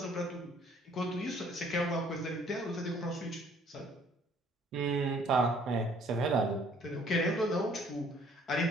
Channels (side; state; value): both; normal; correlation 0.59